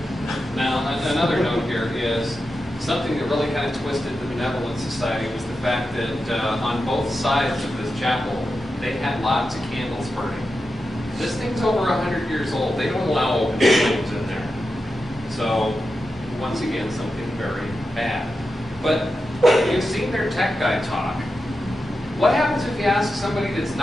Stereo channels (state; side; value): normal; both; correlation 0.90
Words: Now, another note here is something that really kind of twisted the Benevolent Society was the fact that on both sides of this chapel, they had lots of candles burning. This thing's over 100 years old. They don't allow open flames in there. So, once again, something very bad. But you've seen their tech guy talk. What happens if you ask somebody that's